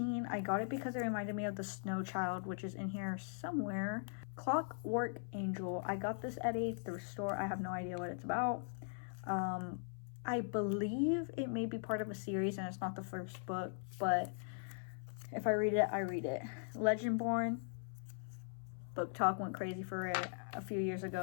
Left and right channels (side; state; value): right; silent; 51 dB below the other